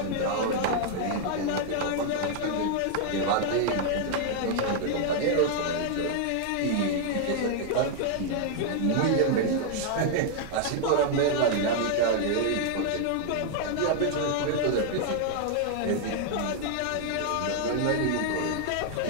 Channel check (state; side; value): different; both; correlation -0.01